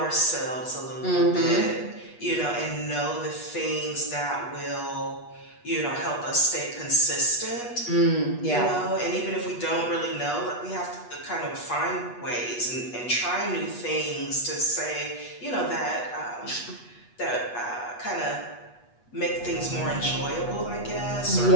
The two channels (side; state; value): right; late; 8.2 ms